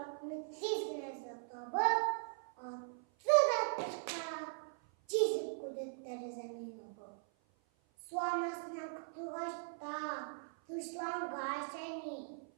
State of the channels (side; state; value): left; silent; 51 dB below the other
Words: çizgine satabı, attı da çıka, çizip kudetleri zemin obu. Sonrasına kutulaşta, dışlangaç seni.